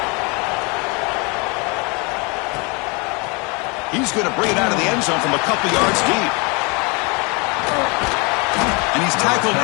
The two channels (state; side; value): quieter; right; 30.2 dB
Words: He's going to bring it out of the end zone from a couple yards deep. And he's tackled